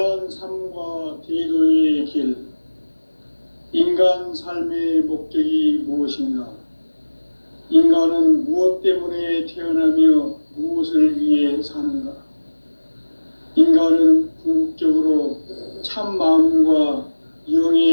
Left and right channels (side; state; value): both; inverted; correlation -1.00